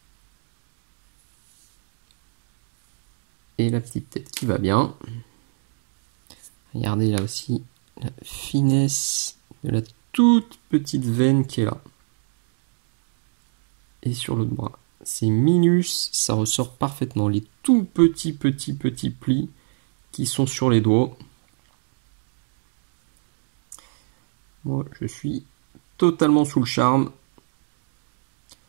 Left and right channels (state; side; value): silent; left; digital silence